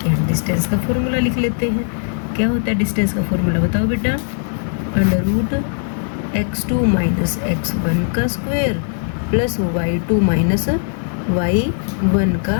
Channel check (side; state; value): right; silent; digital silence